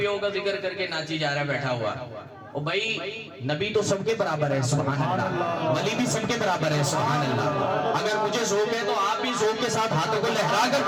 کا ذکر کر کے ناچی جا رہا ہے بیٹھا ہوا. او بھائی نبی تو سب کے برابر ہے سبحان اللہ, ولی بھی سب کے برابر ہے سبحان اللہ. اگر مجھے ذوق ہے تو آپ بھی ذوق کے ساتھ ہاتھوں کو لہرا کر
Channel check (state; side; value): identical; both; correlation 1.00